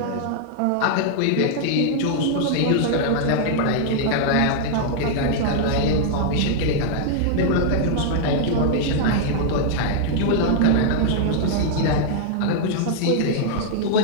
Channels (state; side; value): different; both; correlation -0.01